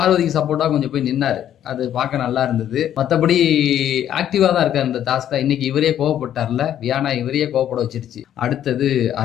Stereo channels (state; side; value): quieter; right; 10.7 dB